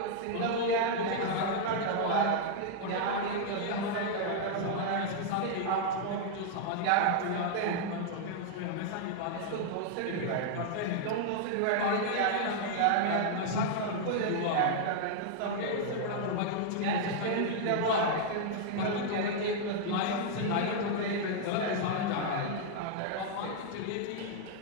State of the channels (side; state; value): both; different; correlation -0.01